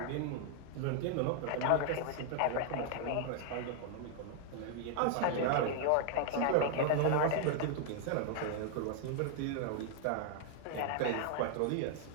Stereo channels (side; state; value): both; different; correlation 0.00